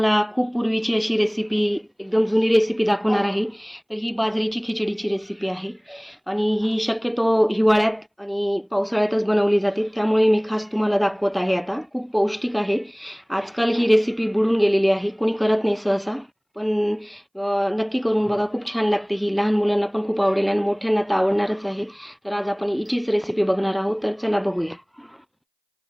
खूप पूर्वीची अशी रेसिपी, एकदम जुनी रेसिपी दाखवणार आहे. तर ही बाजरीची खिचडीची रेसिपी आहे आणि ही शक्यतो हिवाळ्यात आणि पावसाळ्यातच बनवली जाते. त्यामुळे मी खास तुम्हाला दाखवत आहे. आता खूप पौष्टिक आहे. आजकाल ही रेसिपी बुडून गेलेली आहे, कोणी करत नाही सहसा, पण नक्की करून बघा, खूप छान लागते ही. लहान मुलांना पण खूप आवडेल आणि मोठ्यांना तर आवडणारच आहे. तर आज आपण हिचीच रेसिपी बघणार आहोत. तर चला बघूया.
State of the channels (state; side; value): identical; both; correlation 1.00